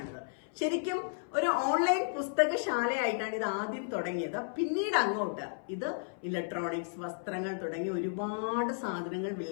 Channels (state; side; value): silent; right; 56 dB below the other